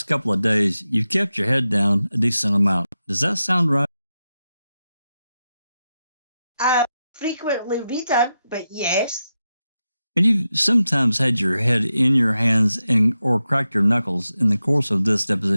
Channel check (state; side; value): inverted; both; correlation -0.90